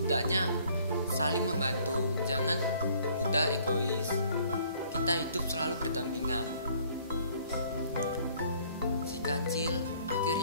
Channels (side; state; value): both; inverted; correlation -0.59